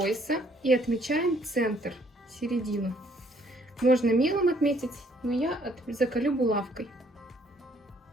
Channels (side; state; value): both; normal; correlation 0.65